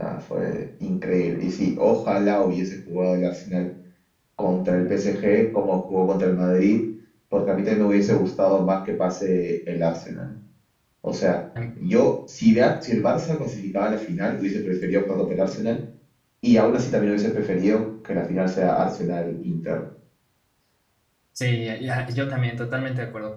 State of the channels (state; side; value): identical; both; correlation 1.00